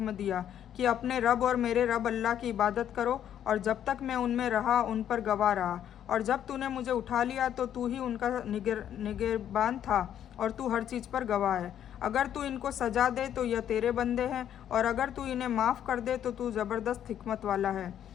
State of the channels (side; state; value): right; quieter; 10.1 dB